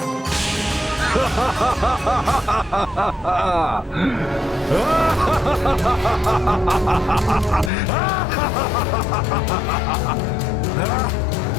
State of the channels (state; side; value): drops out; right; at 7.7 s